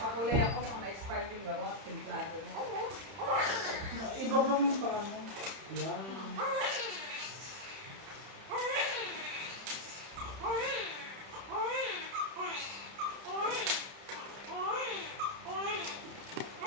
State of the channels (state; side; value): late; left; 30 ms